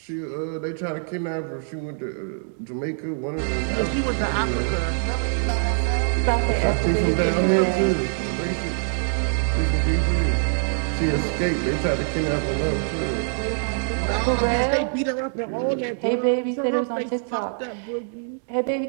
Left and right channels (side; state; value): left; silent; digital silence